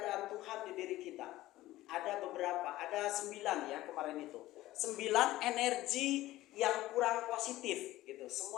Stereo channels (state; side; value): quieter; right; 16.3 dB